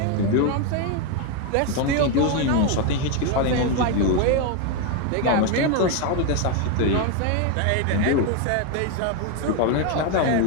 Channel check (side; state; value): both; different; correlation 0.02